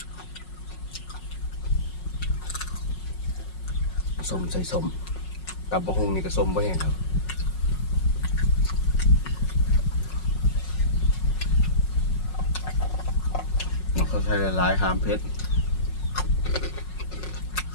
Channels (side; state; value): right; late; 5.5 ms